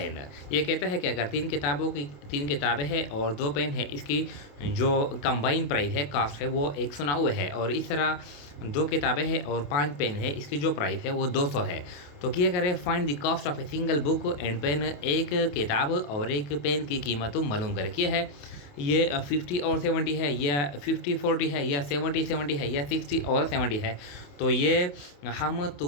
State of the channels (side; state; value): right; late; 28 ms